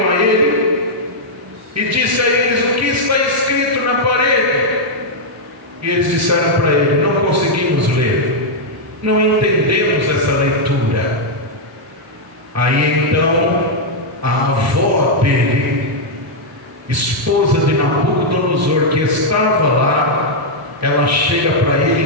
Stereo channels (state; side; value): normal; both; correlation -0.04